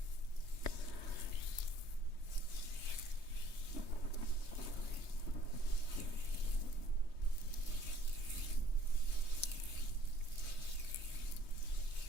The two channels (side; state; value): right; late; 3.2 ms